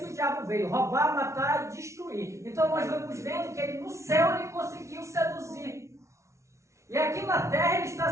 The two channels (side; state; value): left; late; 0.14 ms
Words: o diabo veio, roubar, matar e destruir. Então nós vamos vendo que ele no céu ele conseguiu seduzir. E aqui na terra ele